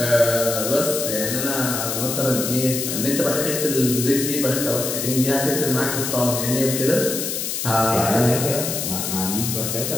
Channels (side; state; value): left; noise; hiss, 3 dB below the sound